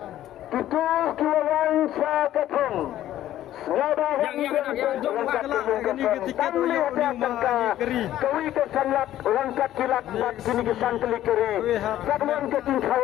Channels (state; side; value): quieter; right; 13.0 dB